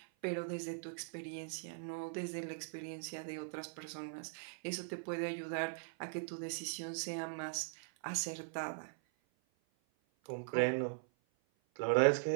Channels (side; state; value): left; silent; 51 dB below the other